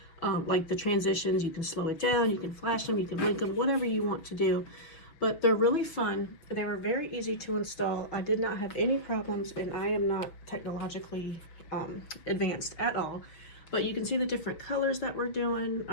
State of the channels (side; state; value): right; late; 6.2 ms